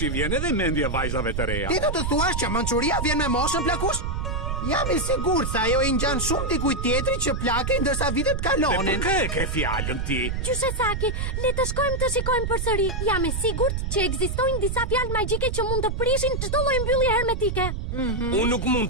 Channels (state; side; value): noise; right; rumble, 2 dB below the sound